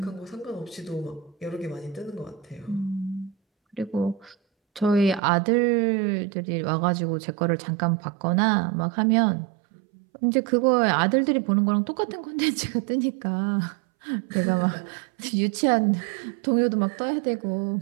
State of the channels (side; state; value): left; drops out; at 5.2 s